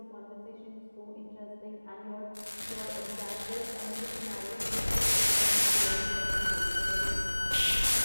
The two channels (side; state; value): both; inverted; correlation -1.00